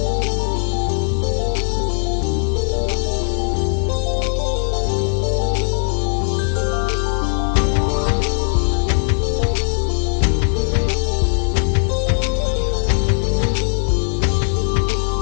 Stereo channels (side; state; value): right; silent; digital silence